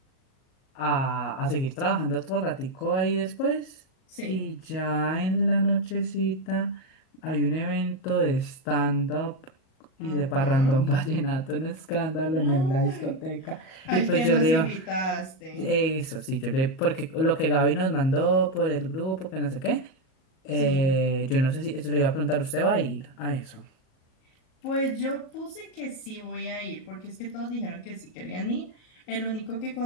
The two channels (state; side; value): late; right; 38 ms